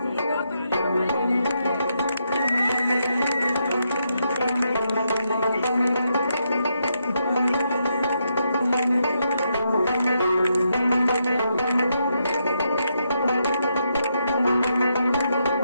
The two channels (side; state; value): both; inverted; correlation -0.80